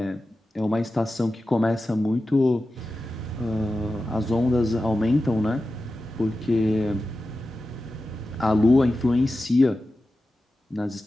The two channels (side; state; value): both; normal; correlation 0.93